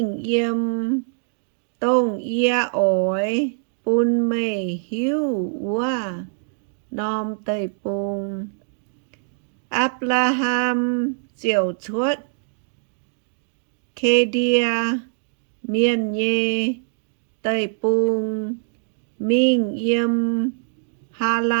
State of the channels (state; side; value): silent; left; digital silence